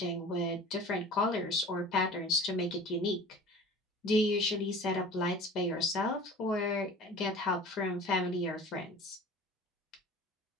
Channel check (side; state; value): both; normal; correlation 0.42